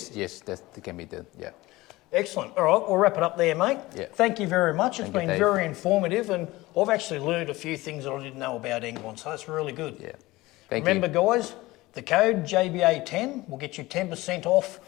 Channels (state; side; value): quieter; right; 19.6 dB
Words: that can be done. Yeah. Excellent. All right, we'll wrap it up there, mate. Yeah. Thank you very much. It's been very informative, and I've actually learned a few things that I didn't know about England, so that's really good. Yeah. Remember, guys, the code JBA10 will get you 10% off